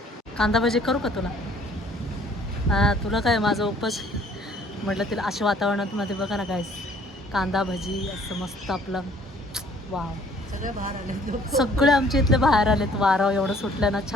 कांदा भजी करू का तुला? हां तुला काय, माझं उपवास. म्हटलं तिला अशा वातावरणामध्ये बघा ना गाईस, कांदा भजी असं मस्त आपलं. वाव, सगळे बाहेर आले, सगळे आमच्या इथले बाहेर आलेत. वारं एवढं सुटलं ना,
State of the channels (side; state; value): both; normal; correlation 0.57